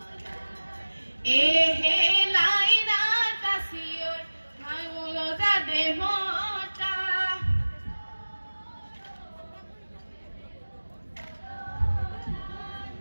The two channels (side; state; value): both; inverted; correlation -1.00